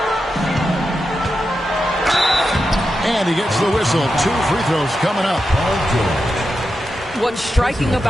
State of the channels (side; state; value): both; normal; correlation 0.88